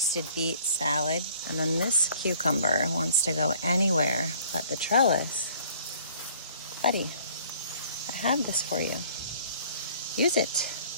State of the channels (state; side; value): inverted; both; correlation -0.55